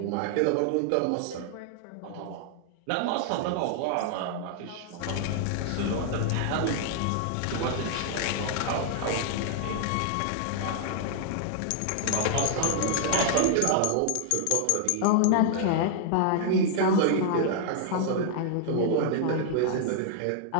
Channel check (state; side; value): different; both; correlation 0.00